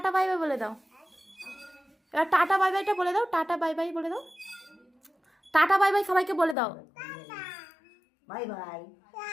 বাই বাই বলে দাও। এবার টাটা বাই বাইটা বলে দাও। টাটা বাই বাই বলে দাও। টাটা বাই বাই সবাইকে বলে দাও। বাই বাই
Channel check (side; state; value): right; drops out; at 6.6 s